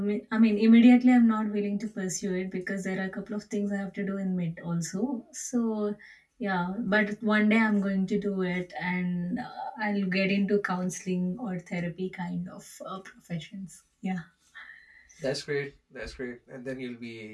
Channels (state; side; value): identical; both; correlation 1.00